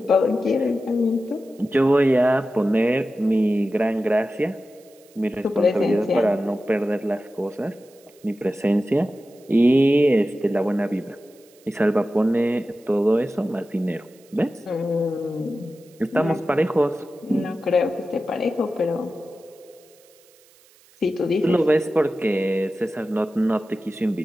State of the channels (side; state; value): right; noise; hiss, 29 dB below the sound